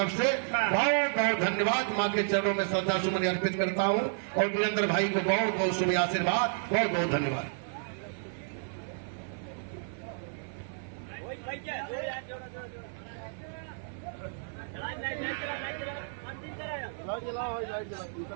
से बहुत बहुत धन्यवाद। माँ के चरणों में श्रद्धा सुमन अर्पित करता हूँ और वीरेंद्र भाई को बहुत बहुत शुभ आशीर्वाद, बहुत बहुत धन्यवाद।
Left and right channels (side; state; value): left; silent; 57 dB below the other